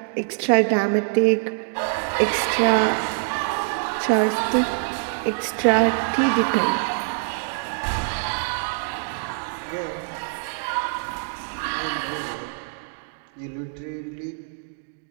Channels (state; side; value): silent; left; digital silence